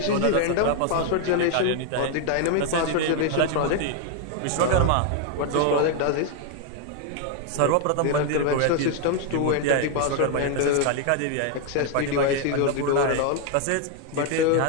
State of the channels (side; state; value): both; different; correlation 0.00